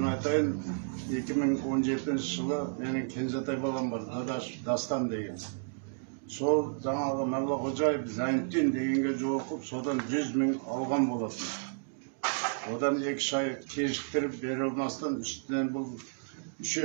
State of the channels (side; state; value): left; silent; digital silence